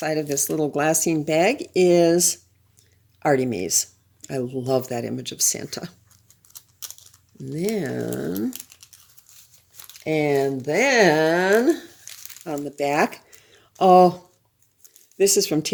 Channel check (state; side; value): identical; both; correlation 1.00